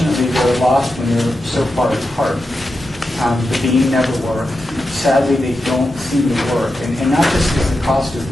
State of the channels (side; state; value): both; normal; correlation 0.89